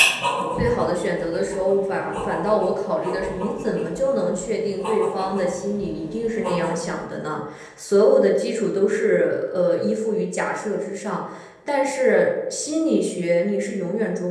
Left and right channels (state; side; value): identical; both; correlation 1.00